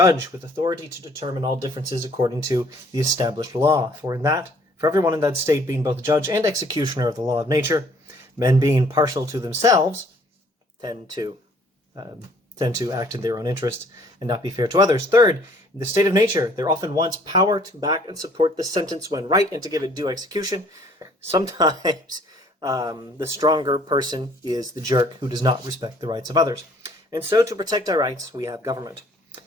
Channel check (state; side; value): normal; both; correlation 0.58